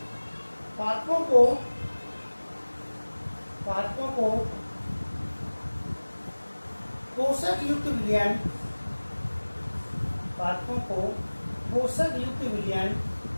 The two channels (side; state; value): both; inverted; correlation -1.00